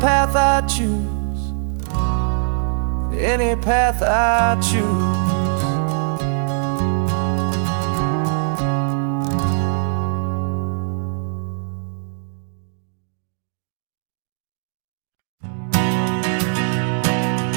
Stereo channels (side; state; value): left; silent; 65 dB below the other